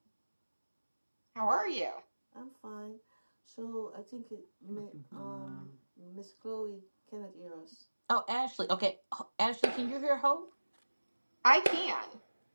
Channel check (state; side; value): inverted; both; correlation -1.00